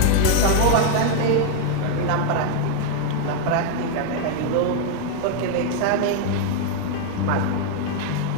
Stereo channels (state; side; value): different; both; correlation 0.00